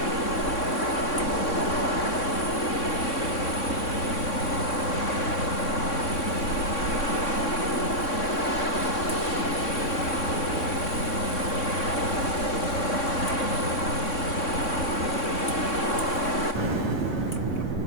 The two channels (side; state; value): right; late; 3.6 ms